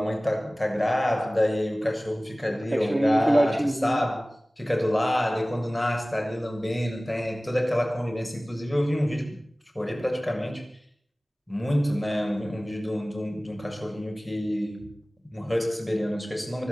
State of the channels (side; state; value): both; normal; correlation 0.98